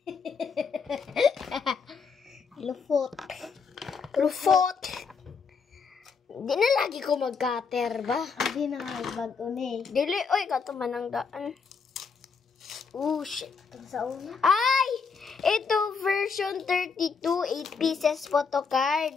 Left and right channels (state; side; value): quieter; right; 5.5 dB